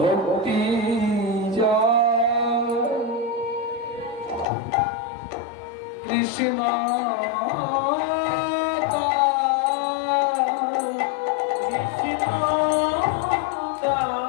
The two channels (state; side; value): drops out; right; at 4.5 s